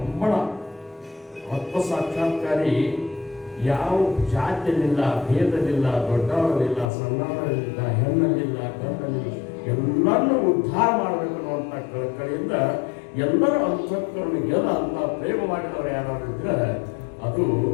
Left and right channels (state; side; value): drops out; right; at 6.9 s